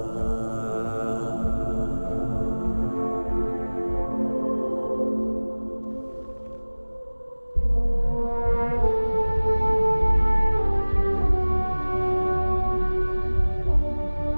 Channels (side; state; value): both; inverted; correlation -1.00